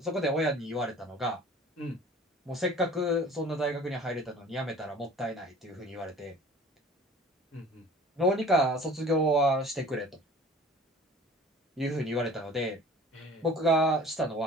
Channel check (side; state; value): both; normal; correlation 0.46